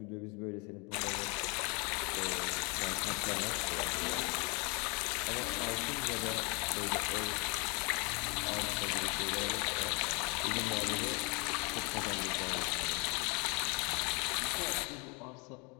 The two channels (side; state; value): right; quieter; 31.0 dB